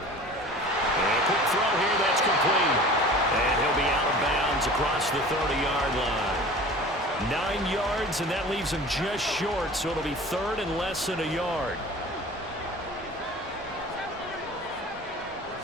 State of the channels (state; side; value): normal; both; correlation 0.41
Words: And a quick throw here, that's complete. And he'll be out of bounds across the 30-yard line. 9 yards, and that leaves him just short, so it'll be third and less than a yard.